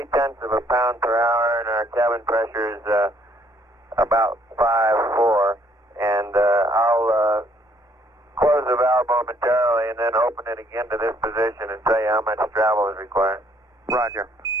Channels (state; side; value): normal; both; correlation 0.64